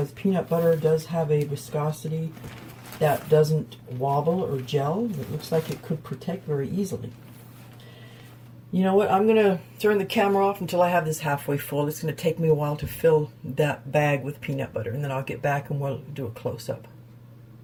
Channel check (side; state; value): both; identical; correlation 1.00